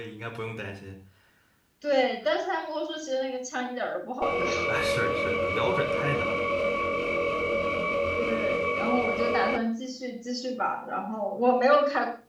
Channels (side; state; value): both; identical; correlation 1.00